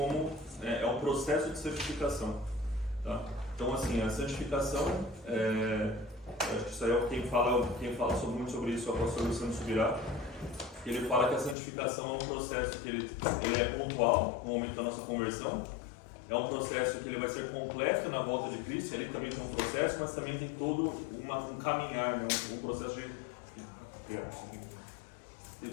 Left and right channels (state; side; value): drops out; right; at 11.6 s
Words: é um processo de santificação. Tá? Então, assim, a santificação, acho que isso aí é quem fala muito sobre isso, é o apóstolo Luciano Subirá. Ele fala que a santificação é um processo que ele é pontual no momento da nossa conversão. É um processo que ele vai ser completo na volta de Cristo. Ali também tem um processo, mas também tem todo um caminhar, né? Um processo de... Tem